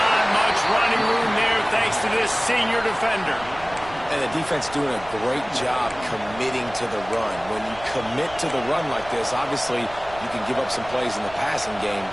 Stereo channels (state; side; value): noise; right; rumble, 18 dB below the sound